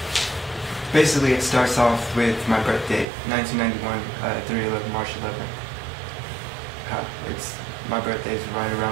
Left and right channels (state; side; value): drops out; left; at 3.1 s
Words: Basically, it starts off with my birthday, 1991, 3/11, March 11th. My birthday's right